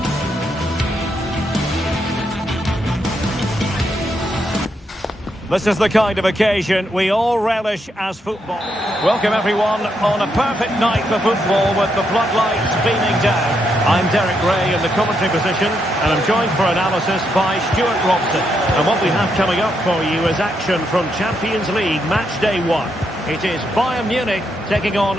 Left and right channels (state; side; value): normal; both; correlation 0.79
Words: This is the kind of occasion we all relish as football. Welcome everyone on a perfect night for football with the floodlights beaming down. I'm Derek Ray in the commentary position and I'm joined for analysis by Stuart Robson. And what we have coming up for you is action from Champions League match day 1. It is Bayern Munich taking